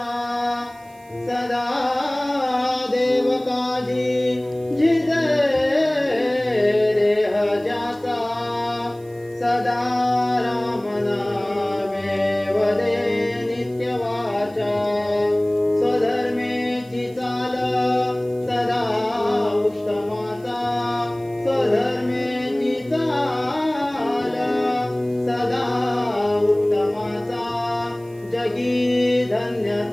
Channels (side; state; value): right; noise; hiss, 28 dB below the sound